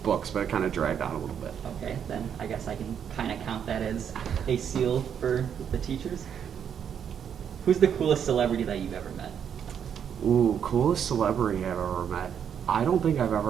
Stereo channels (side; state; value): left; quieter; 8.2 dB